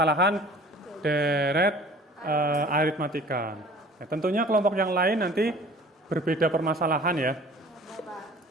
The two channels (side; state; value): both; normal; correlation 0.47